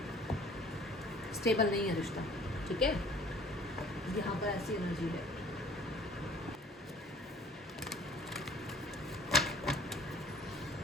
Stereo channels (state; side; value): normal; both; correlation 0.52